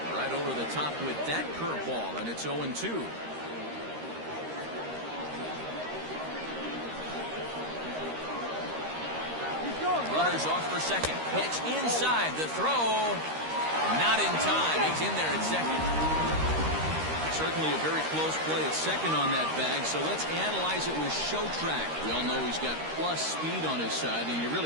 Right over the top with that curveball, and it's 0-2. Runners off for second. Pitch inside. The throw. Not in time. He's in there at second. Certainly a very close play at second on that bag, so let's analyze it with show track. We all know he's got plus speed on his side, and you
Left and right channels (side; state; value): left; late; 13 ms